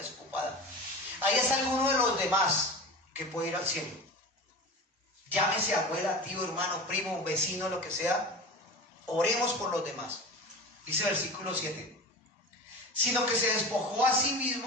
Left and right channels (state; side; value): normal; both; correlation 0.31